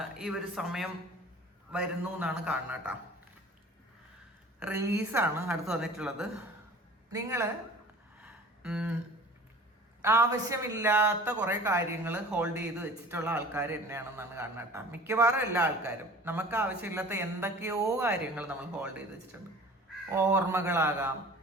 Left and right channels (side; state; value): both; normal; correlation 0.44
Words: ഈ ഒരു സമയം വരുന്നു എന്നാണ് കാണുന്നത് കേട്ടോ. റിലീസാണ് അടുത്ത് വന്നിട്ടുള്ളത്. നിങ്ങൾ ആവശ്യമില്ലാത്ത കുറേ കാര്യങ്ങൾ ഹോൾഡ് ചെയ്ത് വെച്ചിട്ടുള്ള ആൾക്കാർ തന്നെയാണെന്നാണ് കാണുന്നത് കേട്ടോ. മിക്കവാറും എല്ലാ ആൾക്കാരും നമുക്ക് ആവശ്യമില്ലാത്ത എന്തൊക്കെയോ കാര്യങ്ങൾ നമ്മൾ ഹോൾഡ് ചെയ്ത് വെച്ചിട്ടുണ്ട്. ഓർമ്മകളാകാം,